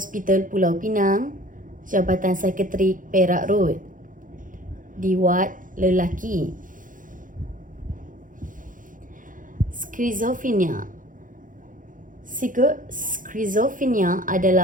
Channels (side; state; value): left; late; 0.39 ms